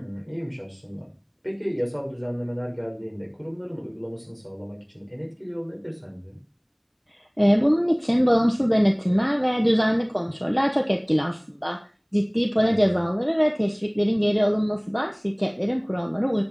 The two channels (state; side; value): identical; both; correlation 1.00